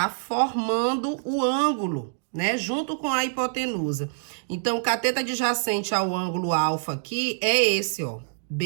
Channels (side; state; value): left; silent; digital silence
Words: formando o ângulo, né? Junto com a hipotenusa. Então, o cateto adjacente ao ângulo alfa aqui é esse, ó,